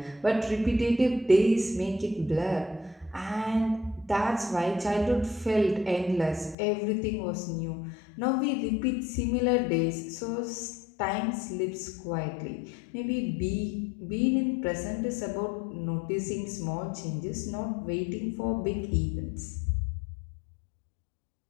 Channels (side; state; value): right; drops out; at 6.6 s